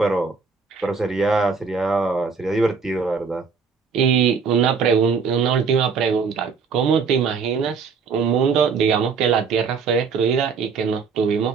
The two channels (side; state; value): left; quieter; 5.5 dB